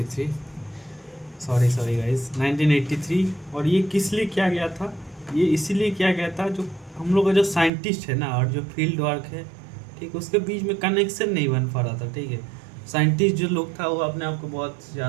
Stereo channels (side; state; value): left; drops out; at 7.7 s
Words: सॉरी गाइस 1983। और ये किस लिए किया गया था? ये इसीलिए किया गया था जो हम लोग का जो साइंटिस्ट है ना और जो फील्ड वर्क है, ठीक, उसके बीच में कनेक्शन नहीं बन पा रहा था। ठीक है, साइंटिस्ट जो लोग था वो अपने आप को बहुत